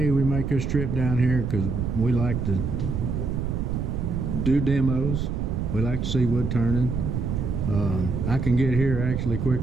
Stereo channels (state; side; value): noise; right; rumble, 2 dB below the sound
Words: we make this trip down here because we like to do demos. We like to see wood turning. I can get here actually